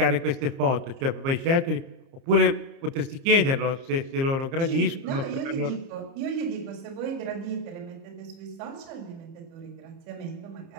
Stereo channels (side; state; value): left; late; 30 ms